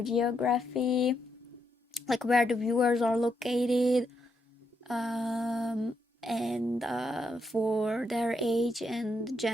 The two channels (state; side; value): normal; both; correlation 0.79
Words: geography, like where the viewers are located, and for their age and